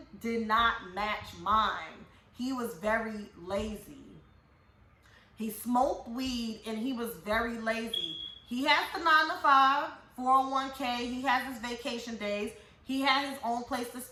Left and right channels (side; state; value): both; identical; correlation 1.00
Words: did not match mine. He was very lazy. He smoked weed, and he was very lazy. He has the 9-to-5, 401k, he has his vacation days. He had his own place to